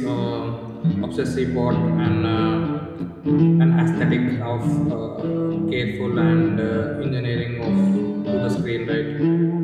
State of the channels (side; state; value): both; identical; correlation 1.00